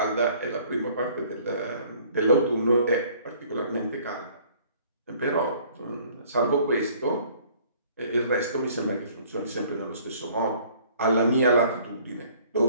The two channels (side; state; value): both; inverted; correlation -0.56